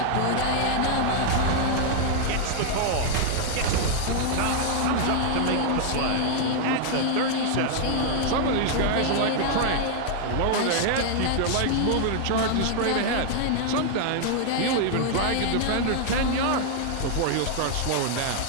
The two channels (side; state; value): both; different; correlation 0.00